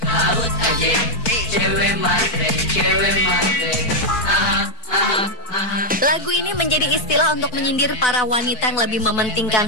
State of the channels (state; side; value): late; right; 4.6 ms